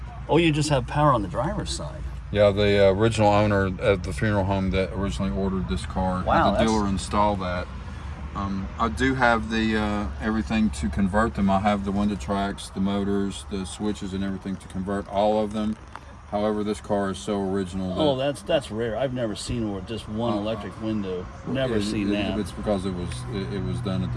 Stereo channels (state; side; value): identical; both; correlation 1.00